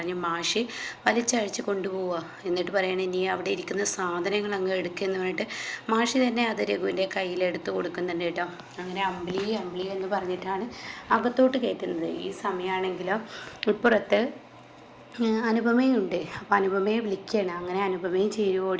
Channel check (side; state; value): both; identical; correlation 1.00